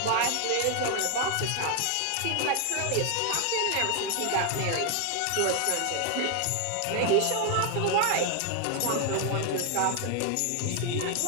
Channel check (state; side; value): different; both; correlation 0.01